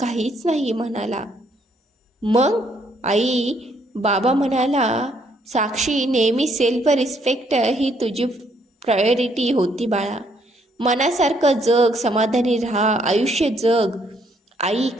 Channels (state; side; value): normal; both; correlation 0.70